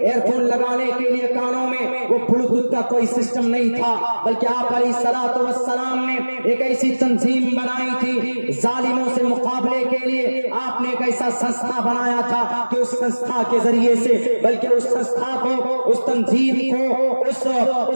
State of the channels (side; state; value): both; inverted; correlation -1.00